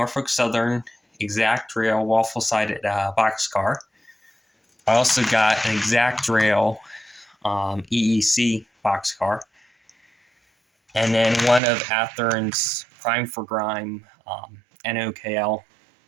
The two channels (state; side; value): drops out; left; at 11.6 s